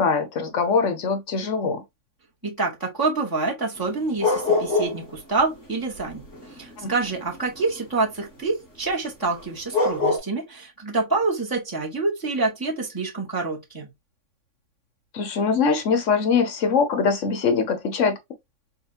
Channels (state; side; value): late; right; 3.6 ms